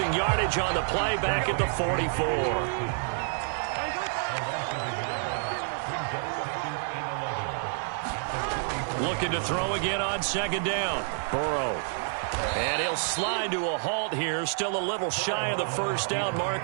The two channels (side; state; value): left; silent; 59 dB below the other